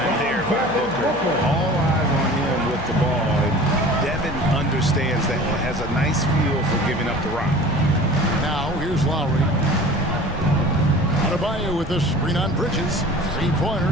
there by Booker. All eyes on him with the ball. And Devin understands that. Has a nice feel for giving up the rock. Now here's Lowry. Adebayo with a screen on Bridges. 3-pointer,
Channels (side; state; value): left; noise; hum, 13 dB below the sound